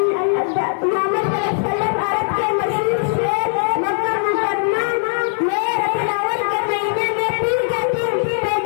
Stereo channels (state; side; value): silent; right; digital silence